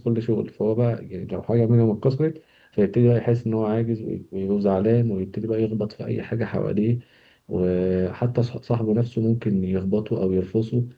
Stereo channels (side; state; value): both; identical; correlation 1.00